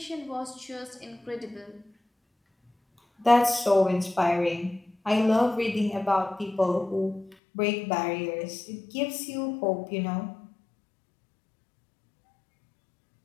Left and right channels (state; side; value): drops out; right; at 7.4 s